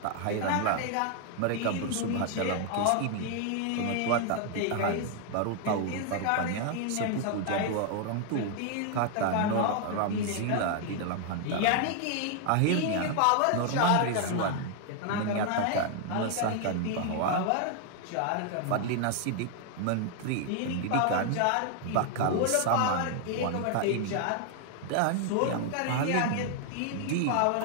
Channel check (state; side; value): different; both; correlation 0.00